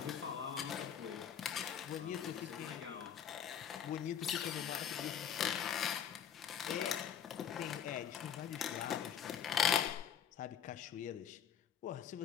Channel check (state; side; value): quieter; right; 8.6 dB